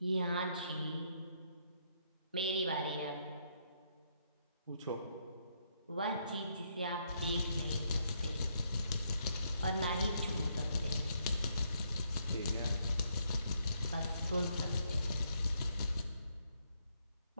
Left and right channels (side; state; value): both; inverted; correlation -0.74